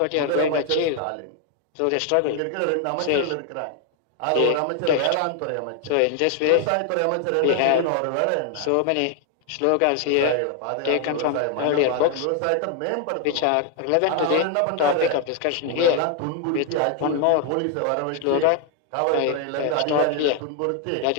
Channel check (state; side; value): different; both; correlation 0.00